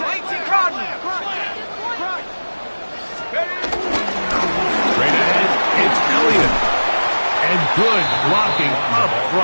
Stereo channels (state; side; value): inverted; both; correlation -1.00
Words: Good blocking up